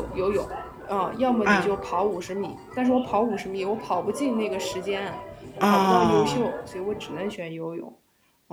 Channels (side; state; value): both; identical; correlation 1.00